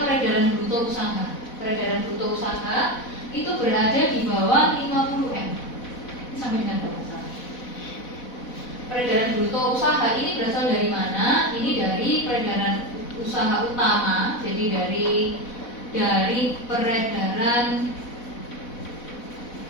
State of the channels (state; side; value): late; right; 4.1 ms